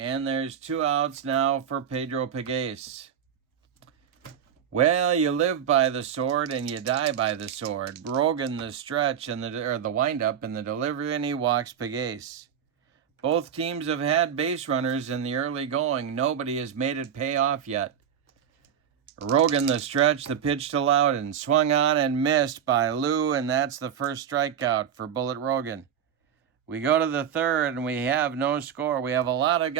there's 2 outs now for Pedro Pegues. Well, you live by the sword and you die by the sword. Rogan the stretch and the windup and the delivery, and he walks Pegues. Both teams have had base runners in the early going. Nobody has made it pay off yet. Rogan the stretch, the pitch to Loudon, swung on and missed by Lou, and that's the first strikeout for Bullet Rogan. We go to the third, and we have no score. We have a lot of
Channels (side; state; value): left; quieter; 8.5 dB